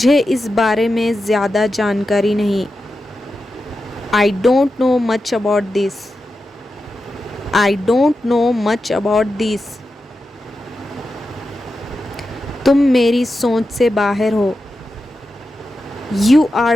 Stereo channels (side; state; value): both; normal; correlation 0.90